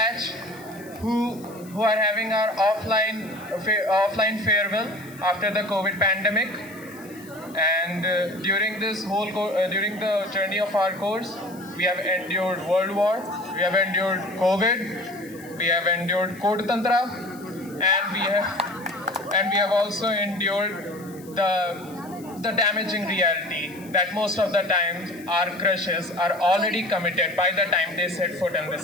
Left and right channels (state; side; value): noise; left; hiss, 22 dB below the sound